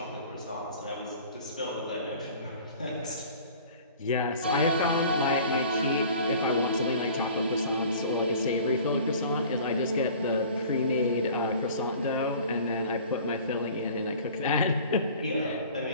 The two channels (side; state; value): both; inverted; correlation -0.47